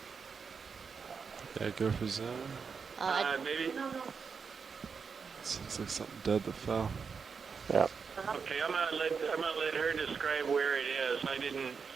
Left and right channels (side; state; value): left; quieter; 5.7 dB